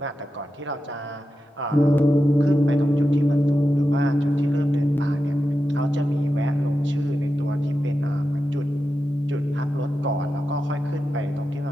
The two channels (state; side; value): normal; both; correlation 0.90